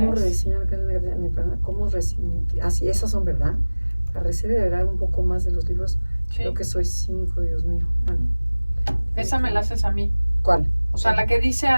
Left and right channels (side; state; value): both; inverted; correlation -1.00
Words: ¿Cómo rediseñar mi programa? Así, esas son, ¿verdad? La receta de verdad un poco más de los libros. Sí. Creo que soy 5, Dios mío. Bueno. Esa me la haces a mí. ¿Cuál? O sea, la que dice